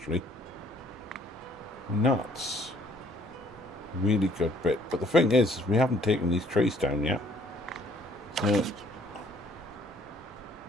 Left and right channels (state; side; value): normal; both; correlation 0.61